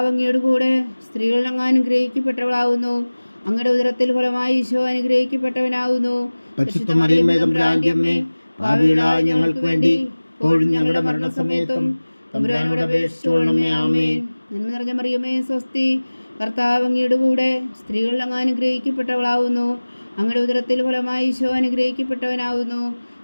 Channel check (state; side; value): inverted; both; correlation -1.00